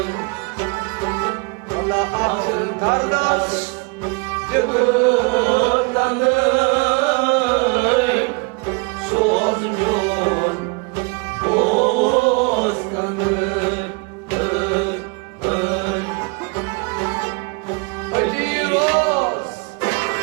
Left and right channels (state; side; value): quieter; left; 30.0 dB